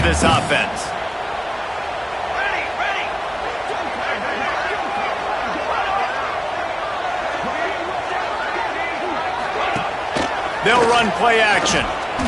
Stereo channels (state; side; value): identical; both; correlation 1.00